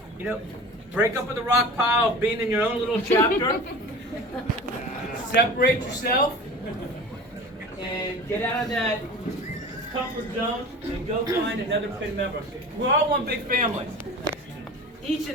break up with the rock pile of being in your own little chapter. Separate yourself and get out of that comfort zone and go find another PIN member. We're all one big family. Each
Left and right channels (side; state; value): both; normal; correlation 0.37